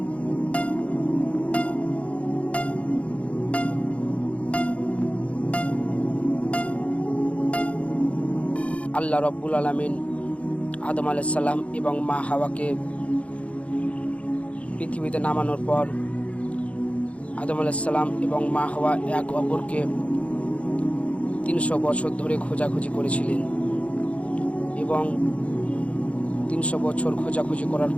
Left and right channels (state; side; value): late; right; 0.064 ms